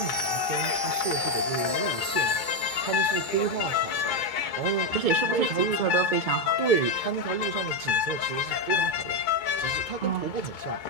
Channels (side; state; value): right; late; 2.2 ms